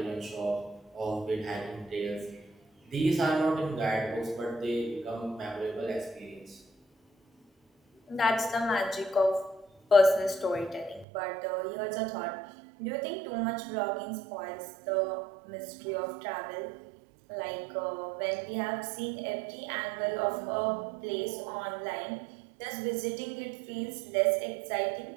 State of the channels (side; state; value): left; drops out; at 11.1 s